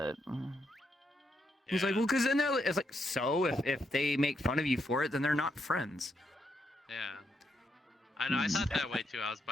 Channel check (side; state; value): both; normal; correlation 0.79